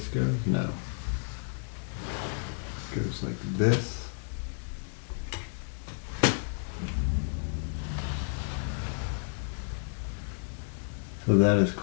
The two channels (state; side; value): silent; right; digital silence